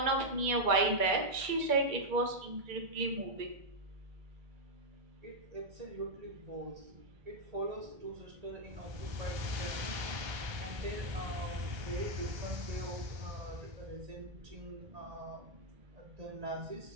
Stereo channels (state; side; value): late; left; 2.3 ms